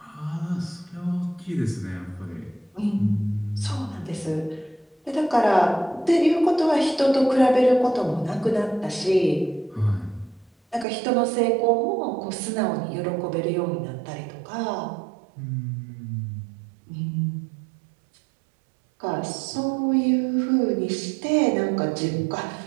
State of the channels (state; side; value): drops out; left; at 10.9 s